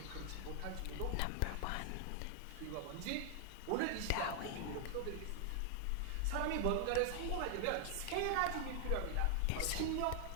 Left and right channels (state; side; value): different; both; correlation 0.00